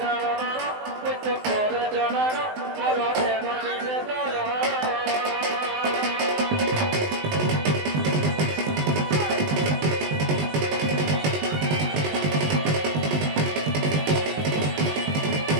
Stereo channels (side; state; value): left; late; 19 ms